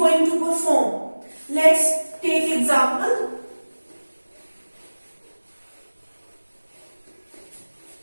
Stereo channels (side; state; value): both; inverted; correlation -1.00